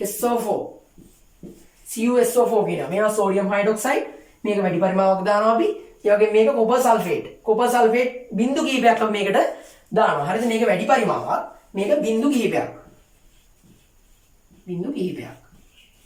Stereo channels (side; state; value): both; identical; correlation 1.00